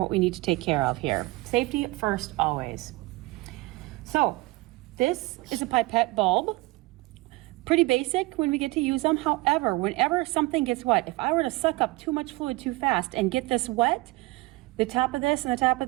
we need to take care of here. Safety first, always. So this is a pipette bulb. Pretty basic when we get to use them. However, whenever something gets wet, if I were to suck up too much fluid too fast and get this wet, the top of this and the top of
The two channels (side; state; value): left; quieter; 21.9 dB